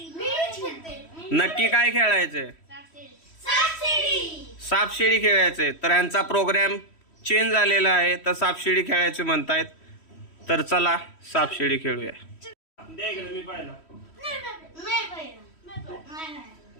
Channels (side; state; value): right; late; 3.1 ms